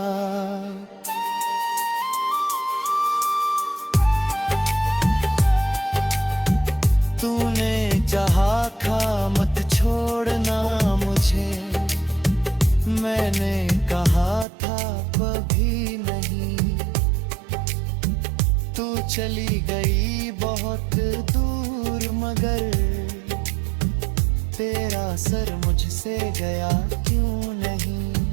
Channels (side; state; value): left; drops out; at 14.5 s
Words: तूने चाहा था मत छोड़ना मुझे, मैंने कहा था कभी नहीं। चली गई बहुत दूर, मगर तेरा सर मुझसे गया क्यों नहीं।